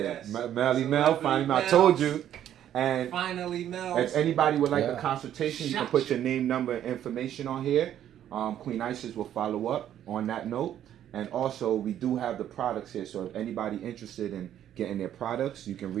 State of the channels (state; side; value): quieter; left; 10.9 dB